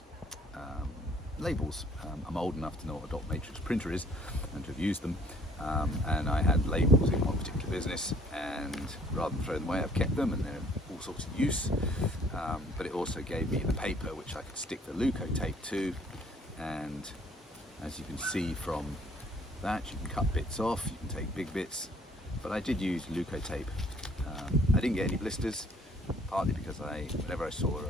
labels. I'm old enough to know what a dot matrix printer is and to have used them, and I had labels in one particular business, and rather than throw them away I've kept them and they're all sorts of use, but it also gave me the paper which I could stick the Leukotape to, and as you can see from that you can cut bits off, you can take big bits, but I did use Leukotape. I didn't get any blisters, partly because whenever I saw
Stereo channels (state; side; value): normal; both; correlation 0.60